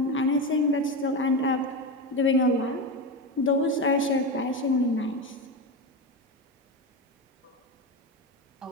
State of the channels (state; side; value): normal; both; correlation 0.17